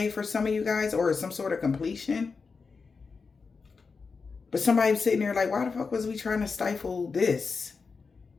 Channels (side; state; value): right; quieter; 4.8 dB